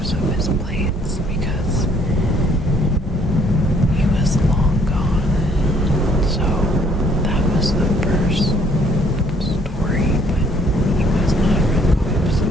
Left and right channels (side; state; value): both; normal; correlation 0.63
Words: of his plates because he was long gone. So that was the first story, but he was not a real cop, so